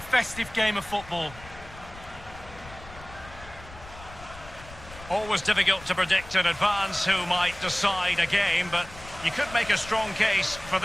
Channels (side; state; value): left; noise; rumble, 17 dB below the sound